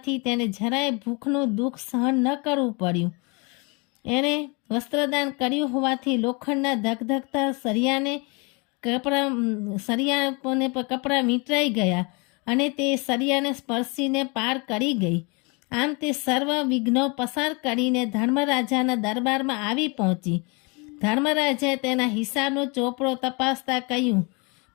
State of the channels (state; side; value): quieter; right; 30.5 dB